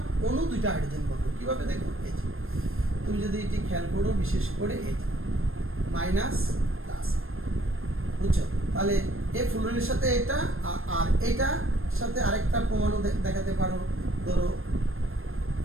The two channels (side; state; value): left; late; 0.60 ms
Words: অণু 2টা হাইড্রোজেন বন্ধন, কিভাবে দেখো, এই যে তুমি যদি এটি খেয়াল করো, বিশেষ করে এই যে মাইনাস প্লাস, বুঝছো? তাহলে এই ফ্লুরিনের সাথে এটা আর এটা সাথে আরেকটা প্রমাণও দেখাতে পারো, ধরো